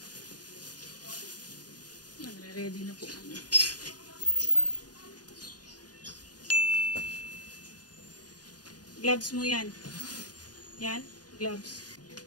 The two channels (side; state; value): right; late; 0.69 ms